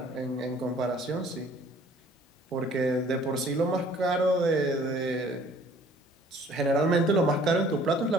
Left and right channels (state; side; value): normal; both; correlation 0.55